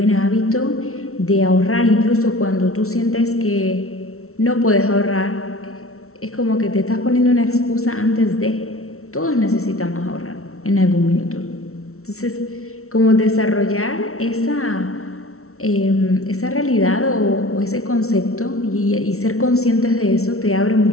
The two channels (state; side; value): late; right; 0.63 ms